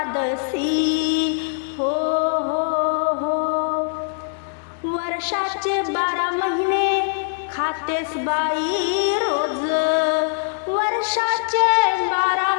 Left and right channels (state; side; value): silent; right; digital silence